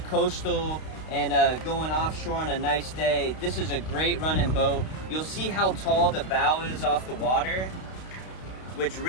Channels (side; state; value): right; late; 32 ms